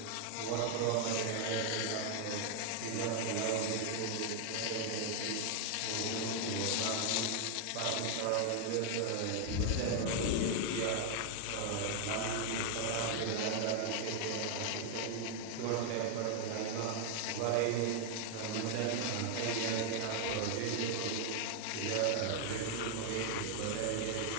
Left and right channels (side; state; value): both; different; correlation 0.00